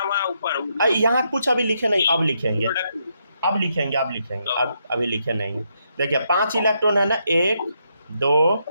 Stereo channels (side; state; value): both; inverted; correlation -0.78